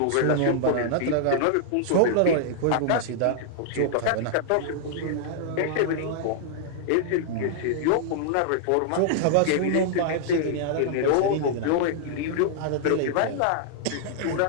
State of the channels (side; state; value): both; different; correlation -0.01